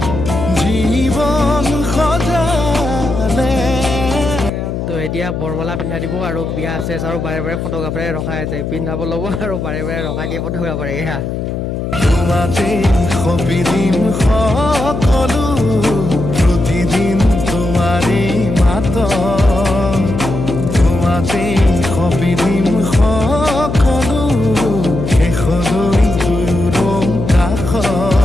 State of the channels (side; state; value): left; noise; hum, 4 dB below the sound